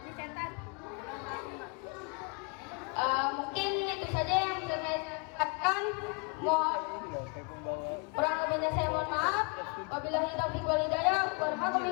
Mungkin itu saja yang bisa saya katakan. Kurang lebihnya saya mohon maaf. Wabillahi taufiq wal hidayah.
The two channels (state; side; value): quieter; right; 31.5 dB